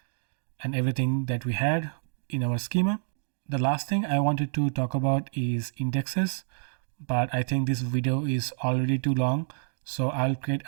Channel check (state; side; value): silent; left; digital silence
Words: and everything that we had in our schema. The last thing I wanted to talk about is indexes, but I think this video is already too long, so I'll create